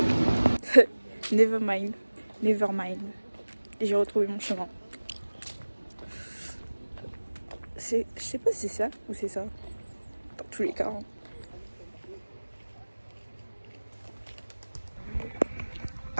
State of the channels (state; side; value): inverted; both; correlation -1.00